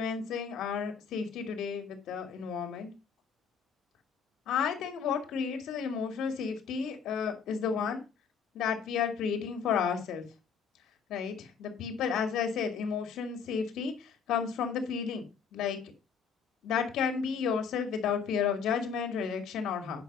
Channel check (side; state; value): right; quieter; 6.4 dB